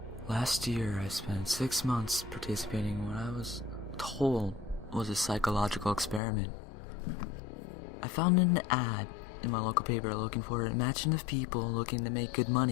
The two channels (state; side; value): drops out; right; at 6.2 s